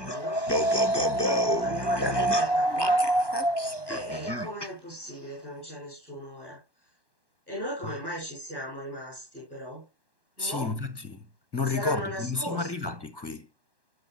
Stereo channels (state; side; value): late; right; 1.1 ms